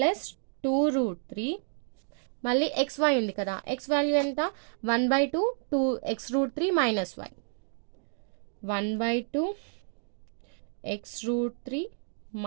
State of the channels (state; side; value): silent; left; digital silence